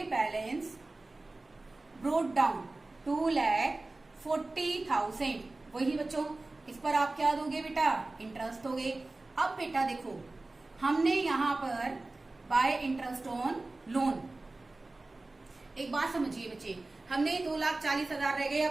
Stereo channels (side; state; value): left; quieter; 3.1 dB